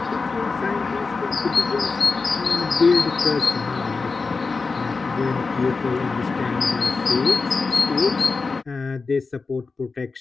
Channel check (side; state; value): right; quieter; 4.3 dB